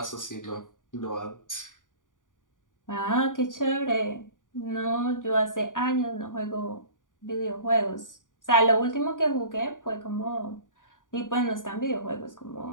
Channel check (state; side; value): late; right; 0.88 ms